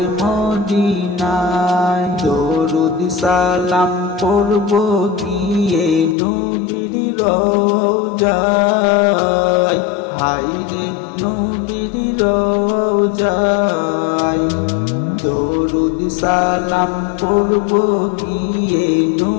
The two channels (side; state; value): right; drops out; at 6.2 s